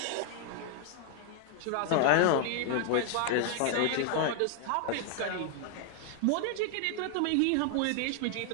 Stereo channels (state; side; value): different; both; correlation 0.00